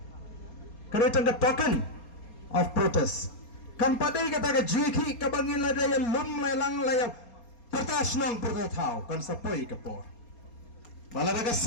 Kani tang ka token of protest. Kan padai kata ka jiki ka bangin la daya lum lang laya pertas nong pertathau kan sapoi ka por. Bala ka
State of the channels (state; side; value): late; right; 4.3 ms